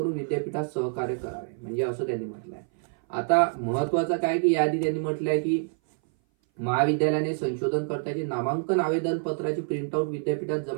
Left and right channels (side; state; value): left; silent; 58 dB below the other